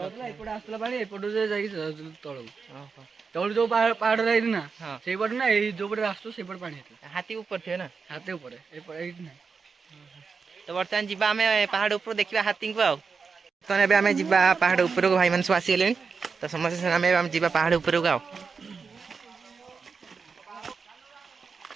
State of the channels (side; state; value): left; quieter; 5.2 dB